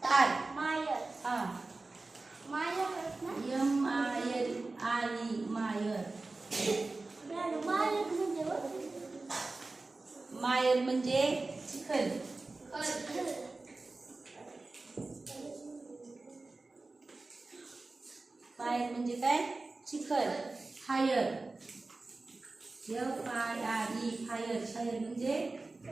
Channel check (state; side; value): quieter; left; 3.4 dB